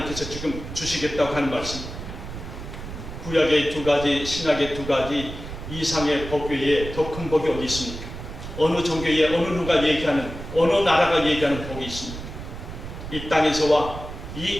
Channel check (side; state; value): right; noise; rumble, 10 dB below the sound